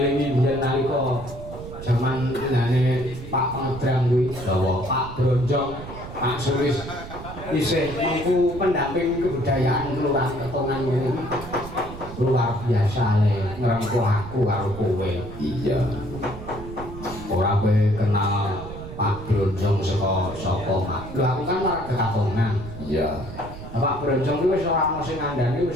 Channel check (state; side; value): noise; right; rumble, 12 dB below the sound